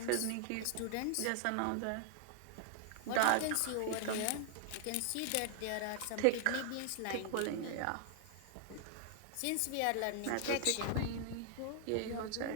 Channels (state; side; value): different; both; correlation 0.00